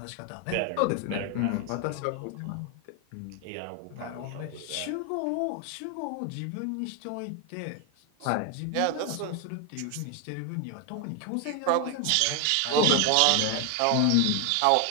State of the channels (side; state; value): both; different; correlation 0.01